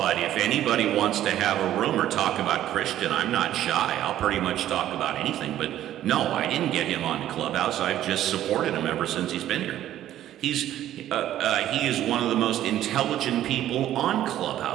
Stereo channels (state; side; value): quieter; left; 12.5 dB